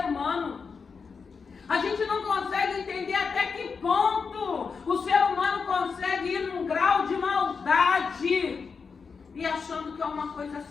humano. A gente não consegue entender até que ponto o ser humano consegue ir num grau de maldade e achando que é uma coisa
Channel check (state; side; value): quieter; right; 5.3 dB